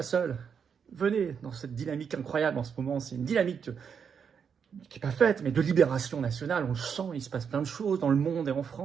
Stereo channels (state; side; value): quieter; left; 6.9 dB